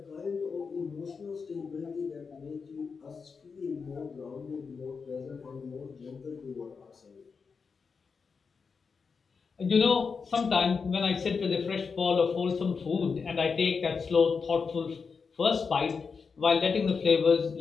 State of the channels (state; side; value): quieter; right; 5.3 dB